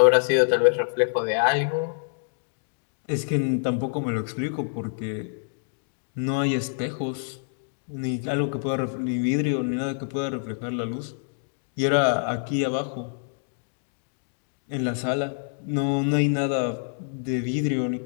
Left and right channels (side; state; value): right; silent; digital silence